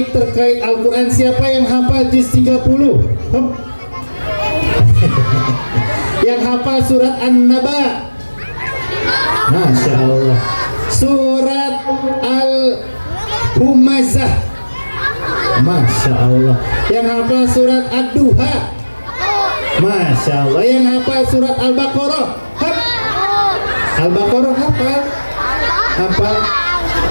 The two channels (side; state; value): both; inverted; correlation -1.00